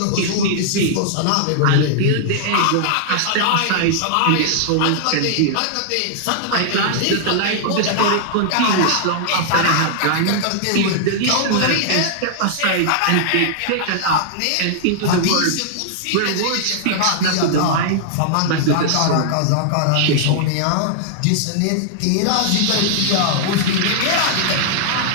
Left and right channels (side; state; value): both; different; correlation -0.01